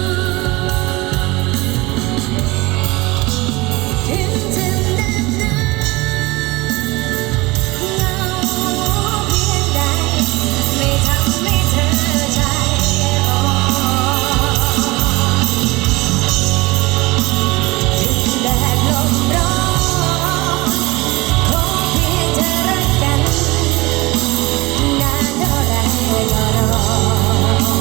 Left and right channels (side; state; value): left; quieter; 22.2 dB